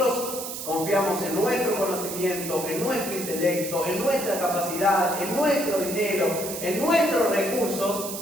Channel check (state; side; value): noise; right; hiss, 7 dB below the sound